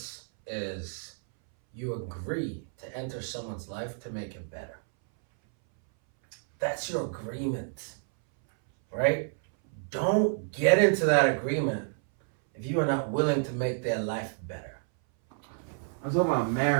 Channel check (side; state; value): left; silent; 58 dB below the other